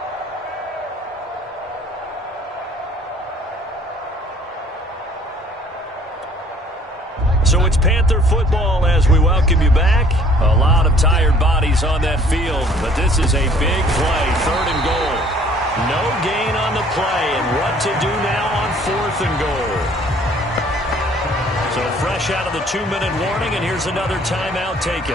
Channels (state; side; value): normal; both; correlation 0.56